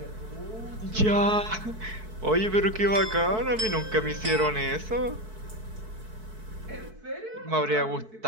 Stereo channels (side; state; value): left; late; 4.6 ms